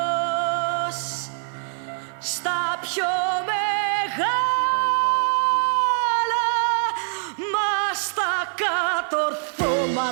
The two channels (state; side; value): silent; left; 57 dB below the other